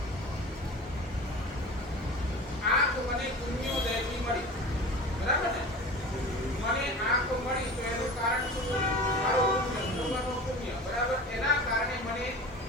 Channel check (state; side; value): normal; both; correlation 0.35